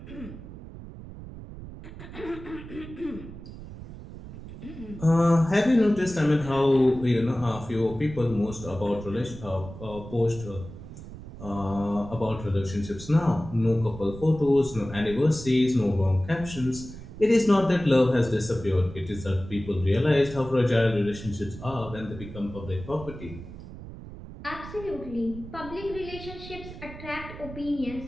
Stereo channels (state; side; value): noise; right; rumble, 13 dB below the sound